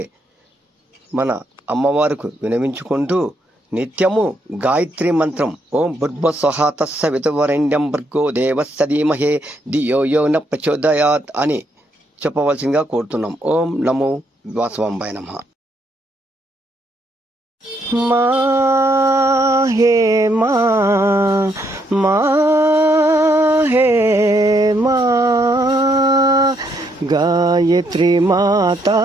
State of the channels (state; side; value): normal; both; correlation 0.74